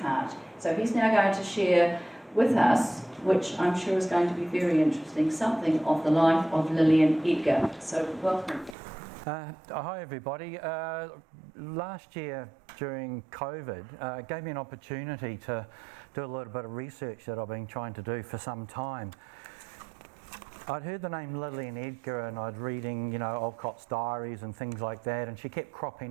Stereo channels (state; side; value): drops out; left; at 8.8 s